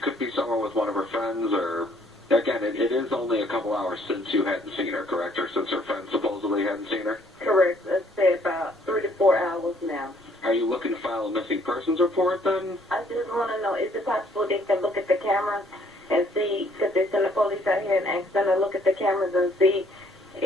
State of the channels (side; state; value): both; normal; correlation 0.64